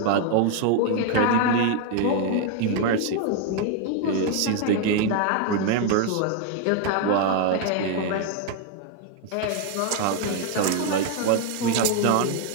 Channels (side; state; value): both; different; correlation 0.01